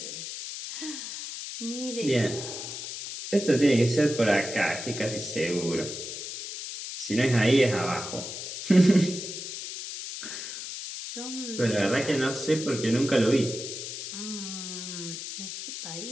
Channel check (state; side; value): noise; left; hiss, 8 dB below the sound